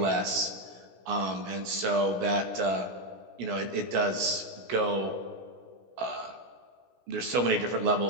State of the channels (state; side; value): late; left; 16 ms